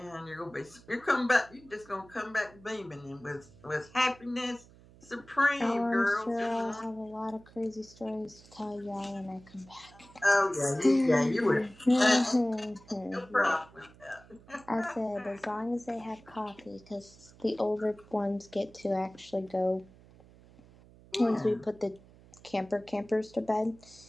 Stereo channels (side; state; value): right; noise; hum, 24 dB below the sound